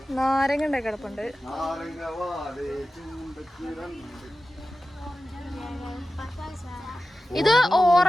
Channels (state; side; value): normal; both; correlation 0.94